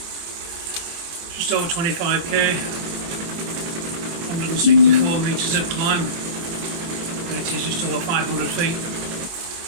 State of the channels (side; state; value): left; late; 24 ms